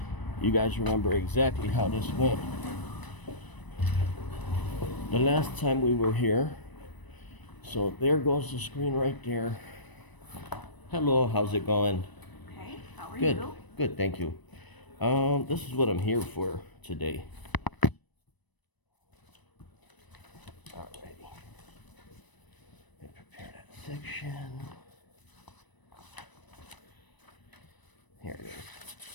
You guys remember exactly how this went the last time we were here. So there goes the screen right there. Hello, how's it going? Okay, how are Good, you? good, thank you. This is what I'm here for today. Alrighty. Let me prepare that section. Here it is.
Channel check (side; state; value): right; late; 1.0 ms